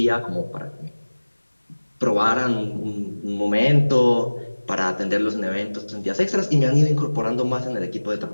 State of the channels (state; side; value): inverted; both; correlation -1.00